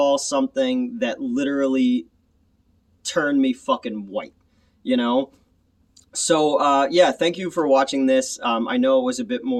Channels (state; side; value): identical; both; correlation 1.00